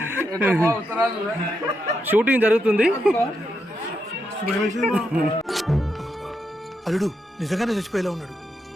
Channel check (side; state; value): both; normal; correlation 0.83